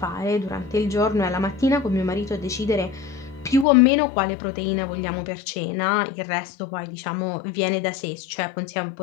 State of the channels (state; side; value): drops out; right; at 3.7 s